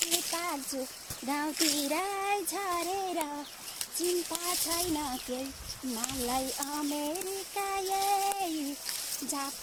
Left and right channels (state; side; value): identical; both; correlation 1.00